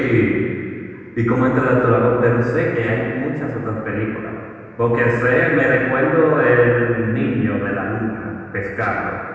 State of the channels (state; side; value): identical; both; correlation 1.00